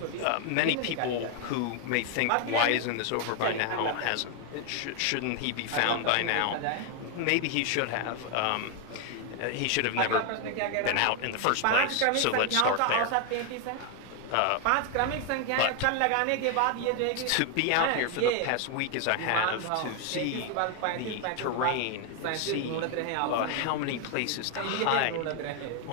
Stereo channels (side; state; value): both; different; correlation 0.00